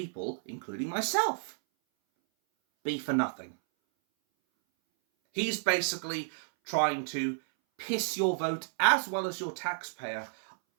including myself, be for nothing. He's basically trying to piss your vote as well as your taxpayer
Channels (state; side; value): silent; left; 57 dB below the other